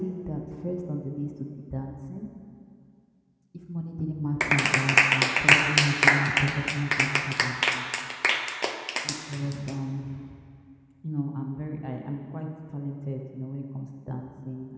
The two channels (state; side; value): identical; both; correlation 1.00